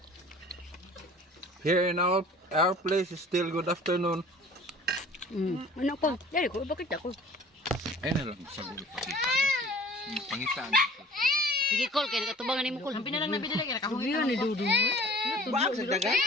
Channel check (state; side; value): normal; both; correlation 0.47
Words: Here in our place is still good afternoon. Ano ko? Dari ko bakit ako? Ayun na lang sa gulit pakita. Pangitaan. Sige call kay nakatubangan nimo call. Sabi na lang nabili lagi nakahuyo ni dudong. Ba sa dagat?